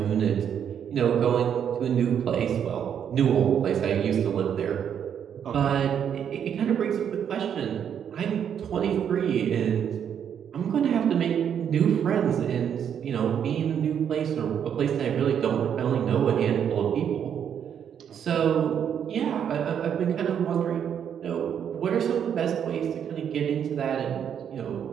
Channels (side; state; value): left; quieter; 8.5 dB